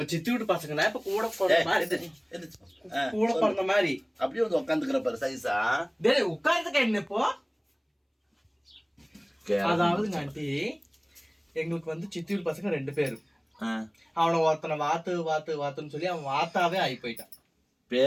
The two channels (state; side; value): identical; both; correlation 1.00